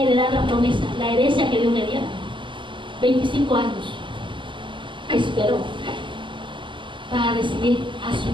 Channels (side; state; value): left; late; 0.24 ms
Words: la promesa, la herencia que Dios le diera. 25 años esperó para recibir a su